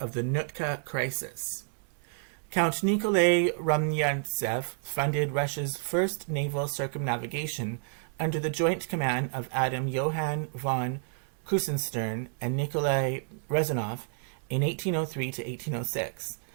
the Nootka Crisis. Count Nikolai Rumyantsev funded Russia's first naval circumnavigation under the joint command of Adam Johann von Krusenstern and Nikolai Rezanov in 1803 to 1806,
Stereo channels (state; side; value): silent; left; 58 dB below the other